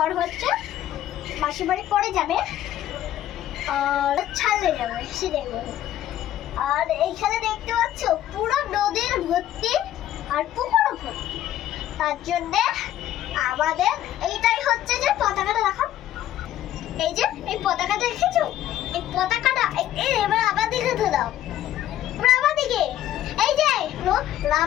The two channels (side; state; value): right; quieter; 12.5 dB